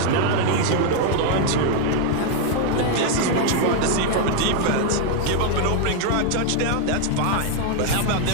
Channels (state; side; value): different; both; correlation 0.01